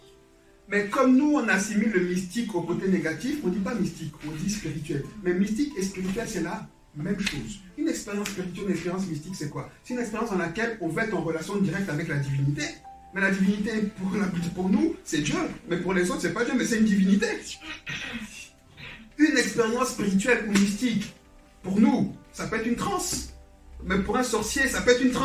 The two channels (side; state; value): both; identical; correlation 1.00